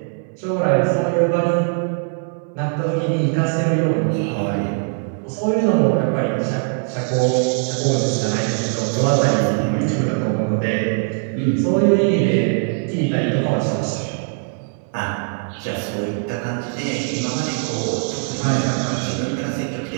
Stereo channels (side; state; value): left; silent; 56 dB below the other